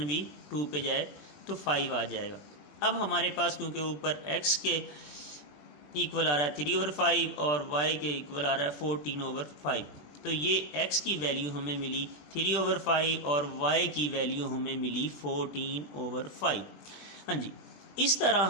भी 2 पे जाए तो 5 आ जाएगा। अब हमारे पास क्योंकि ऊपर x के इक्वल आ रहा है 3/5 और y के इक्वल आ रहा है 14/5, तो ये x की वैल्यू हमें मिली 3/5 और y की वैल्यू हमें मिली 14/5। हाँ जी, इस तरह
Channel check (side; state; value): right; late; 20 ms